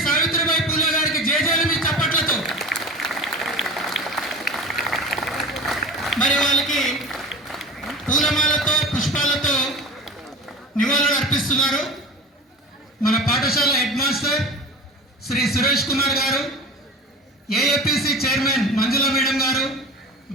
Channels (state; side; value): normal; both; correlation 0.35